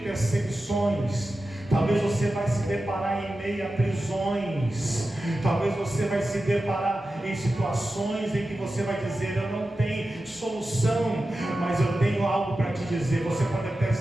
talvez você vai se deparar em meio a prisões, talvez você vai se deparar em situações em que você vai dizer: eu não tenho solução, mas eu tenho algo para te dizer. Você pode até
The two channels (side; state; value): both; normal; correlation 0.93